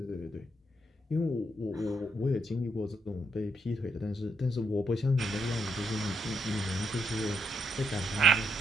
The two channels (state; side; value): normal; both; correlation 0.77